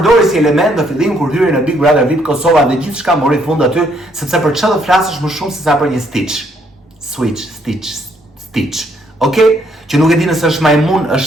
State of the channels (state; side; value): normal; both; correlation 0.70